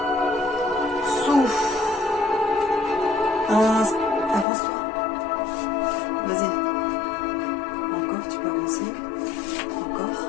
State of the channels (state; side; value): drops out; right; at 4.5 s